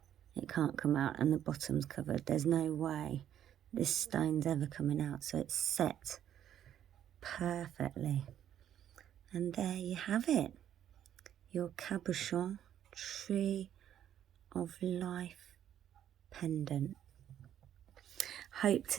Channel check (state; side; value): quieter; left; 10.5 dB